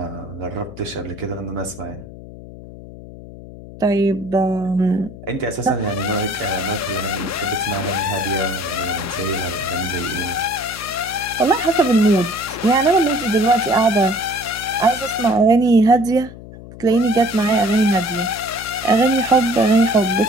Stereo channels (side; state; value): left; noise; hum, 16 dB below the sound